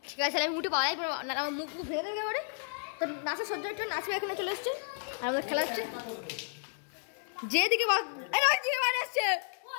ঠিক আছে, আমি মুঠে পালাই, আমার মুখ ভেঙে দেবে এবারে। তো নাচা সহ্য একটু নাচে এখানে চলে এসছে, আর আমার খেলা হচ্ছে। যেদিকে রোহিত দিকে বাড়ি আসছে,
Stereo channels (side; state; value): right; silent; digital silence